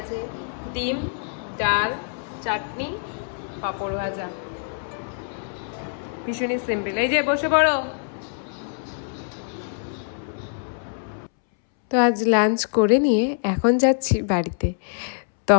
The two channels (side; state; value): right; silent; 62 dB below the other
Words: ডিম, ডাল, চাটনি, পাঁপড় ভাজা। ভীষণই সিম্পল। এই যে বসে পড়ো। তো আজ লাঞ্চ করে নিয়ে এখন যাচ্ছি বাড়িতে।